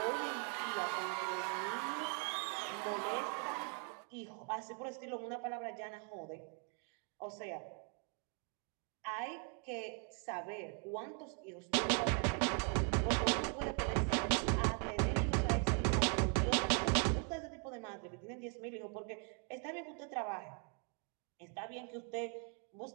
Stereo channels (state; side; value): quieter; left; 39.2 dB